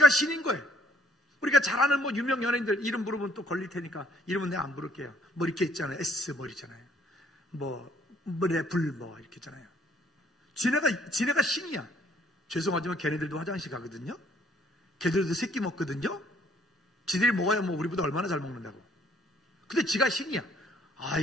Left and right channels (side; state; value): both; normal; correlation 0.64